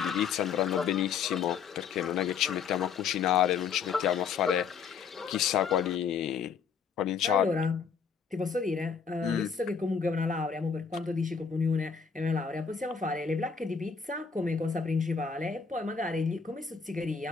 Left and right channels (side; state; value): right; quieter; 6.3 dB